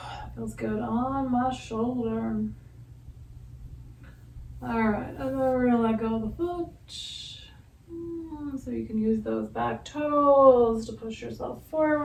feels good on my shoulder. All right, and then we're gonna let go of the foot. So you can use those back toes to push yourself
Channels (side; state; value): both; identical; correlation 1.00